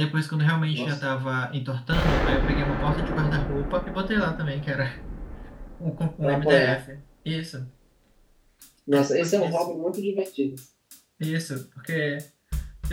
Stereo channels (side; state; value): both; identical; correlation 1.00